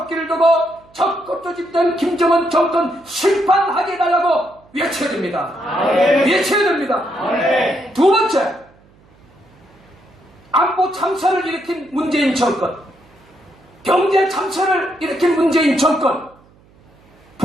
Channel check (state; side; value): noise; right; hum, 30 dB below the sound